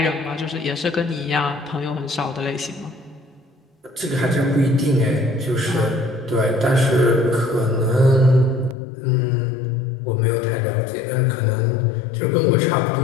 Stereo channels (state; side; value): drops out; right; at 8.8 s